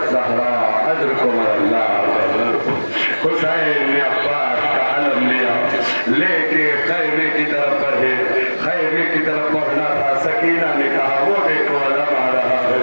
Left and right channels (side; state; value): both; inverted; correlation -1.00